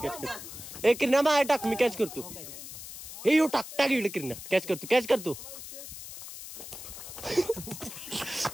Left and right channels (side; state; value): left; noise; hiss, 12 dB below the sound